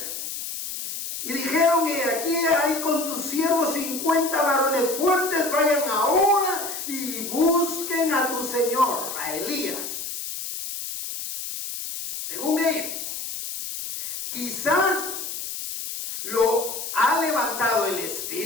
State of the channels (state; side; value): noise; left; hiss, 6 dB below the sound